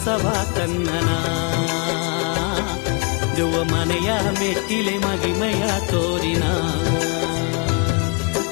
ಕನ್ನನ ದೆವ್ವ ಮನೆಯ ಮೆಟ್ಟಿಲೆ ಮಗಿಮೆಯ ತೋರಿನ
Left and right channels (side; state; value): right; quieter; 34.8 dB